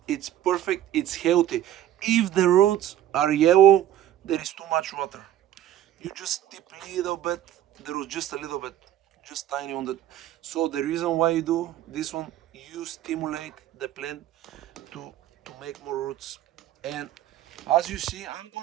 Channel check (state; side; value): quieter; left; 12.1 dB